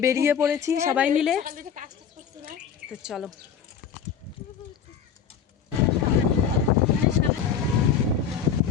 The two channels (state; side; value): quieter; right; 7.5 dB